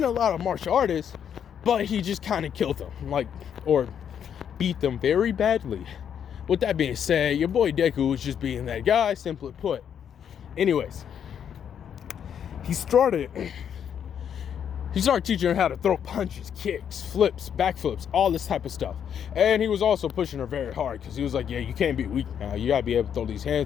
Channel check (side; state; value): right; quieter; 8.5 dB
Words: a lot of martial artists, but he just kind of killed them, or beat them very badly. With that being said, your boy Deku was just being that guy, simply put. Anyways, he started teaching her how to throw punches, kicks, flips, backflips, all this type of stuff. And he was also pushing her very hard because he was like, yeah, you can't be weak now. You gotta be able to throw these